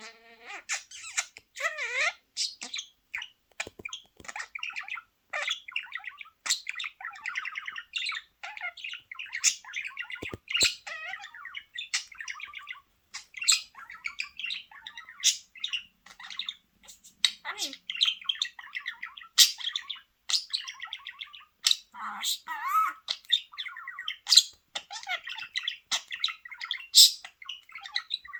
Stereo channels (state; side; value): identical; both; correlation 1.00